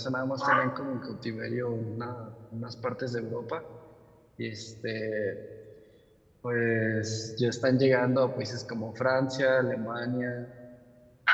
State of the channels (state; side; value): identical; both; correlation 1.00